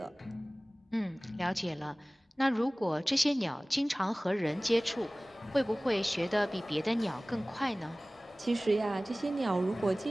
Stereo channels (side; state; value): both; normal; correlation 0.98